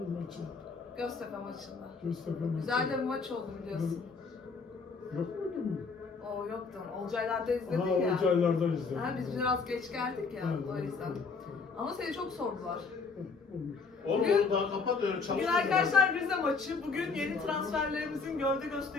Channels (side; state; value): right; quieter; 4.7 dB